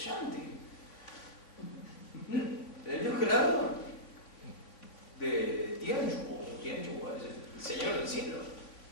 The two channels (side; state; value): right; late; 3.4 ms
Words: El Dios creador de Tianchu, el Señor del cielo.